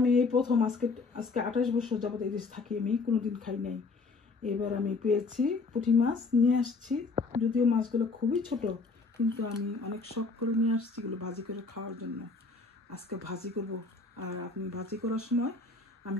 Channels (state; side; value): quieter; right; 4.0 dB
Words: এই প্রথম আজকে 28 বছর যাবত এই দেশে থাকি, আমি কোনোদিন খাই নাই। এবার আমি পেয়েছি পুঁটি মাছ, নিয়ে আসছি। যদিও মাছগুলো খুবই ছোট, কিন্তু আমি অনেক শখ করে নিয়ে আসছি এগুলো ভাজি করে খাওয়ার জন্য। আজকে ভাজি করব, আর আপনি ভাজি করার সময় আমি